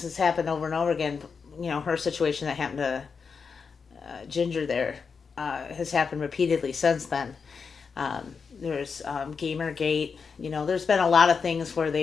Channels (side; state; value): right; quieter; 5.5 dB